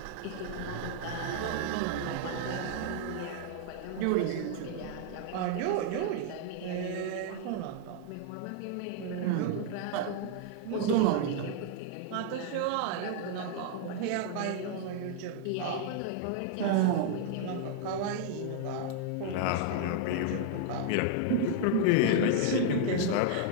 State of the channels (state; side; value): different; both; correlation -0.01